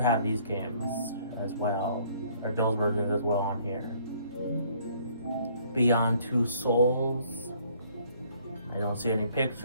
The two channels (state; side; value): inverted; both; correlation -0.62